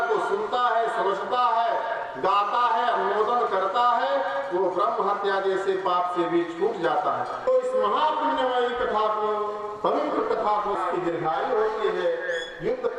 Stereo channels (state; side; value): identical; both; correlation 1.00